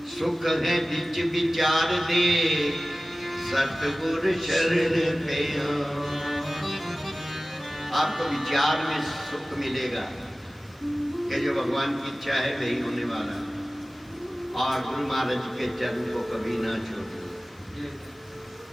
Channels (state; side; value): normal; both; correlation 0.97